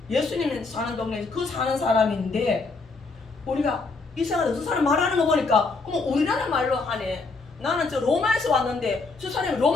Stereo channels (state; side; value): quieter; right; 3.9 dB